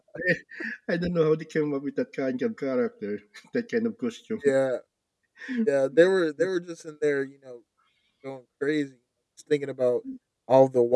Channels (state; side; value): identical; both; correlation 1.00